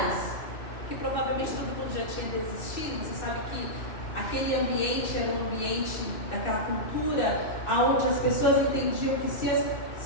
que provavelmente todo mundo já tinha desistido. Você sabe que aquele ambiente era um ambiente daquela cultura onde as pessoas entendiam que se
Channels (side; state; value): right; late; 2.4 ms